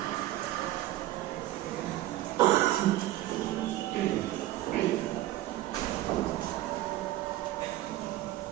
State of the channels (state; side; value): quieter; left; 15.4 dB